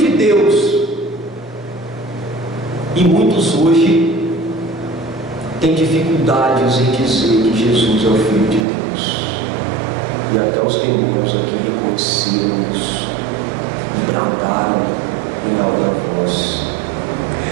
Deus. E muitos hoje têm dificuldades em dizer que Jesus é o Filho de Deus, e até os demônios aqui reconheceram isso e bradaram em alta voz.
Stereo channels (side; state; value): left; drops out; at 8.7 s